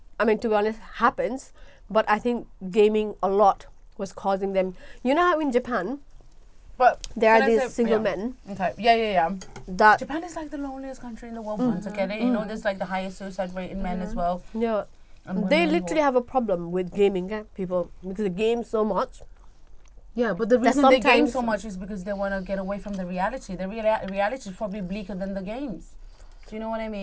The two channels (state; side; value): identical; both; correlation 1.00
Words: to be honest happens. But I think gaming a lot was causing them. You know how in Japan, but there are these single men. Okay. Yeah. That Japan is like the loneliest country in the world. Once again, there's like the highest suicide rate in men as well. Yeah, they literally have a problem with gaming, people, because they game so much. Yeah, but the reason they game so much is because they want to get away from the reality. The reality is probably bleaker than the games. Do you know what I